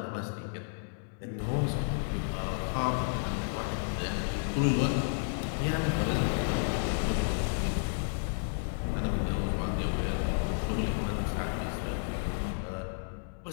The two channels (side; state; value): right; silent; 57 dB below the other